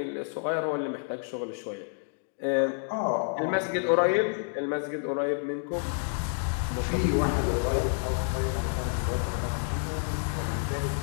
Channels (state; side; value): silent; right; 59 dB below the other